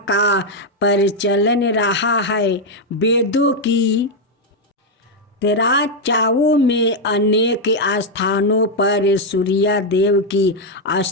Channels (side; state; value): both; normal; correlation 0.01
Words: का प्रचलन रहा है। वेदों की चर्चाओं में अनेक स्थानों पर सूर्य देव की